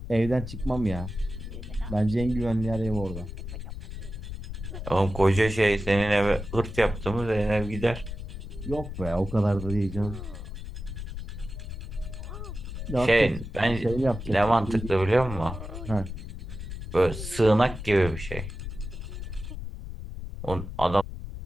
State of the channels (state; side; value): noise; left; rumble, 8 dB below the sound